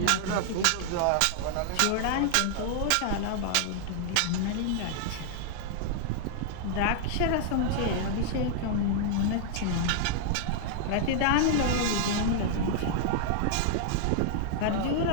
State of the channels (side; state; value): both; different; correlation -0.01